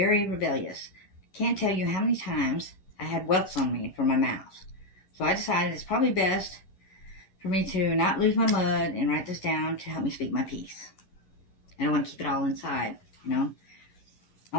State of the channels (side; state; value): right; late; 11 ms